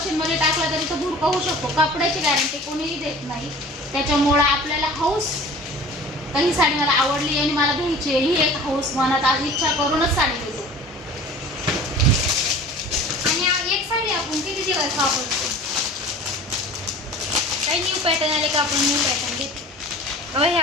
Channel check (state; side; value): normal; both; correlation 0.43